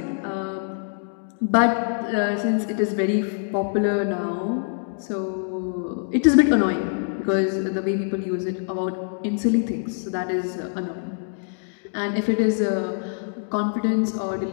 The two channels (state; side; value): silent; right; digital silence